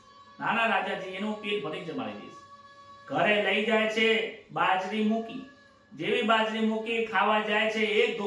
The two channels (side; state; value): both; identical; correlation 1.00